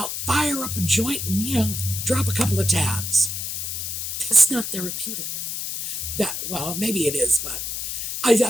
fire up a joint, and, drop a couple of tabs. That's not therapeutic. Well, maybe it is, but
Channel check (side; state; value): left; noise; hiss, 4 dB below the sound